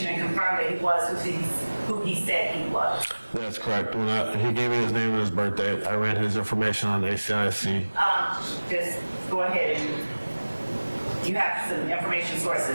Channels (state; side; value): inverted; both; correlation -1.00